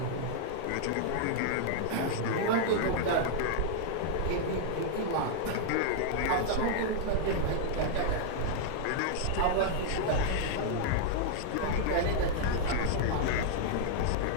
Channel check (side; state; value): both; different; correlation -0.01